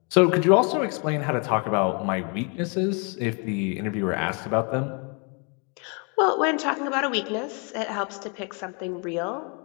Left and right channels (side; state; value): right; quieter; 35.3 dB